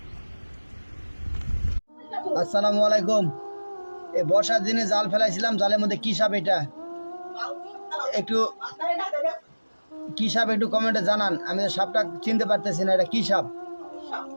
আসসালামু আলাইকুম। এই বর্ষার দিনে জাল ফেলাইছিলাম, জালের মধ্যে কি সাপ এটা একটু কি সাপ একটু কমেন্টে জানান। আমি সাপটা চিনতে পারতেছি না, এটা কি সাপ?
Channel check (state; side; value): inverted; both; correlation -1.00